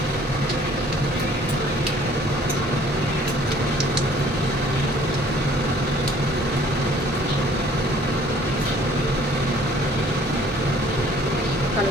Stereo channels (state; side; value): normal; both; correlation 0.56